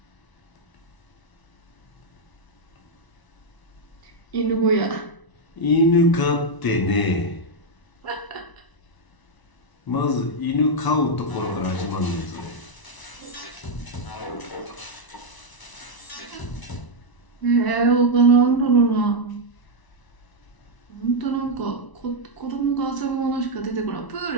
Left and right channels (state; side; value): late; right; 1.0 ms